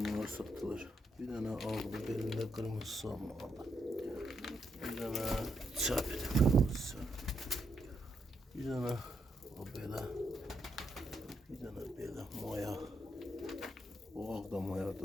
satılır. Bir tane aldı belinde kırmızı salma aldı. Bir tane çapede kırmızı. Bir tane o böyle. Bir tane böyle maya. O da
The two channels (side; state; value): both; normal; correlation 0.79